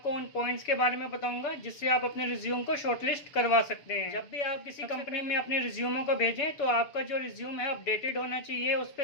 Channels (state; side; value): late; right; 6.9 ms